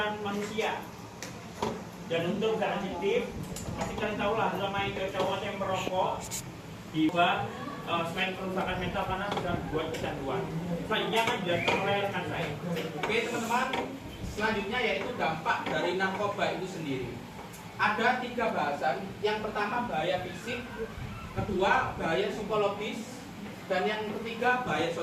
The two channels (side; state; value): both; identical; correlation 1.00